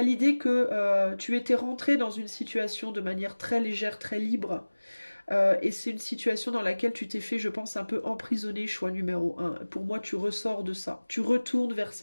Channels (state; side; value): inverted; both; correlation -1.00